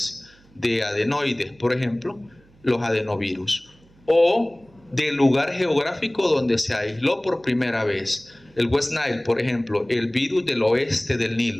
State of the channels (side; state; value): right; noise; hum, 29 dB below the sound